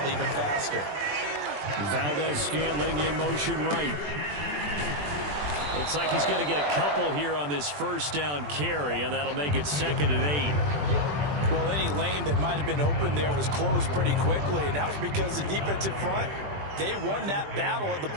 even faster. Valdez-Scantling in motion right. Looks like he's going to get a couple here on this first down carry, and that'll make it 2nd and 8. Well, any lane that might have been open there was closed pretty quickly, and that was because the defensive front, they won that battle at the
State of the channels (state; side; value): late; left; 20 ms